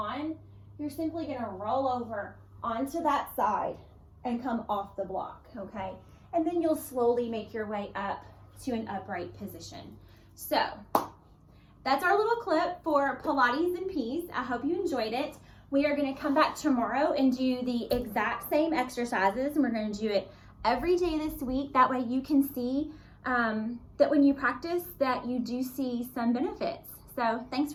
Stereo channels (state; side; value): identical; both; correlation 1.00